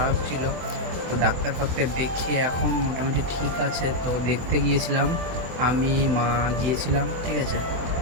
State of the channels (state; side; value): late; left; 24 ms